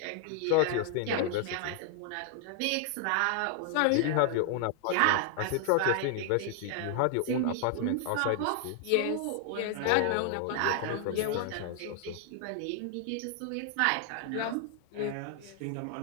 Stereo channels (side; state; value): both; different; correlation 0.00